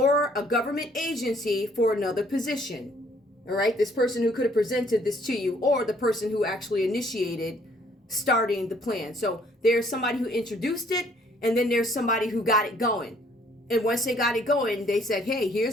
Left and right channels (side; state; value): both; normal; correlation 0.62